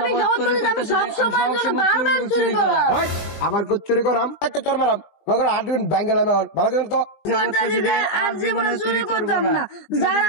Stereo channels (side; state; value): right; late; 20 ms